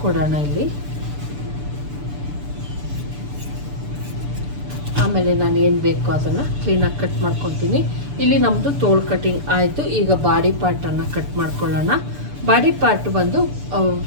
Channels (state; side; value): late; left; 6.9 ms